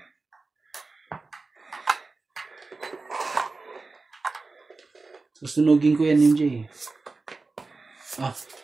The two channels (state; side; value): quieter; left; 3.7 dB